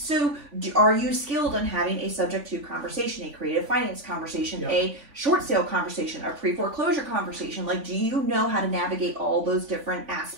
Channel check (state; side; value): late; left; 3.5 ms